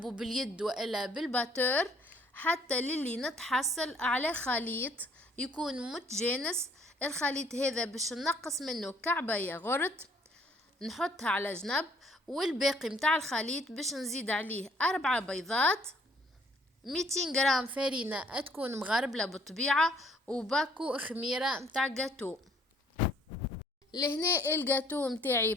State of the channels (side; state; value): both; normal; correlation 0.61